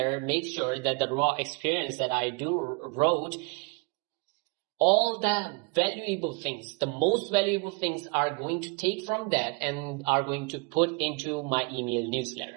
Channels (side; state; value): left; quieter; 29.8 dB